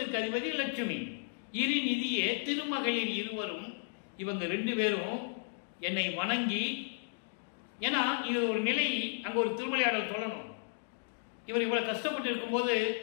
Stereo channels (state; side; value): silent; right; digital silence